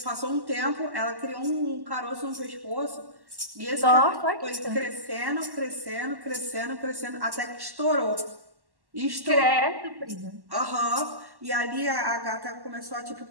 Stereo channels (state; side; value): late; left; 1.1 ms